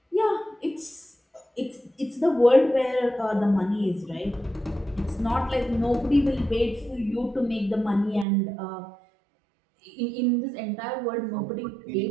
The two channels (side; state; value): left; drops out; at 8.2 s